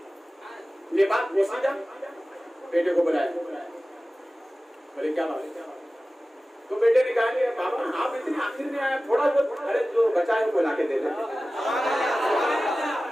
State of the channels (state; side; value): normal; both; correlation 0.96